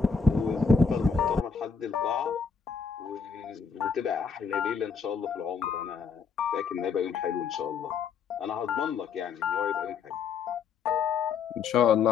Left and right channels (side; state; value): right; quieter; 5.7 dB